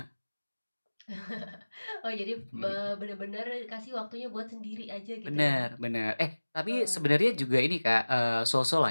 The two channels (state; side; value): inverted; both; correlation -1.00